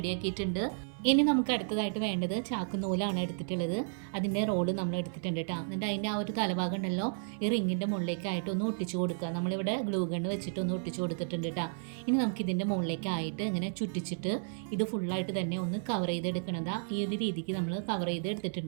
ഇനി നമുക്ക് അടുത്തതായിട്ട് വേണ്ടത് ചാക്കുനൂലാണ് എടുത്തിട്ടുള്ളത്. അതിൻ്റെ റോള് നമ്മൾ എടുത്തിട്ടുണ്ട് കേട്ടോ. എന്നിട്ട് അതിൻ്റെ ആ ഒരു തലഭാഗം ഉണ്ടല്ലോ, ഈ റിങ്ങിൻ്റെ മുകളിലേക്കായിട്ട് ഒന്ന് ഒട്ടിച്ചു കൊടുക്കുക. നമ്മളിവിടെ ഗ്ലൂ ഗണ്ണ് വെച്ചിട്ട് ഒന്ന് ഒട്ടിച്ചു കൊടുത്തിട്ടുണ്ട് കേട്ടോ. ഇനി നമുക്ക് ഇതിൻ്റെ മുകളിലേക്കായിട്ട് ഇങ്ങനെ ചുറ്റിച്ചിട്ട് ഇത് ഫുള്ളായിട്ട് തന്നെ ഒന്ന് കവർ ചെയ്തെടുക്കണതാ. ഈ ഒരു രീതിക്ക് നമ്മൾ കവർ ചെയ്ത്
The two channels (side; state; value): left; silent; 56 dB below the other